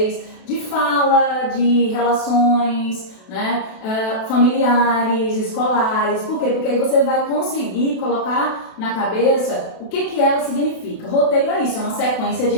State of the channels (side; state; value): right; late; 32 ms